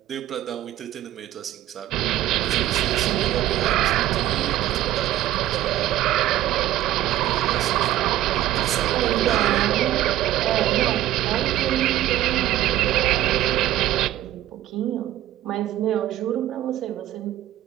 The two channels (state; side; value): quieter; left; 13.7 dB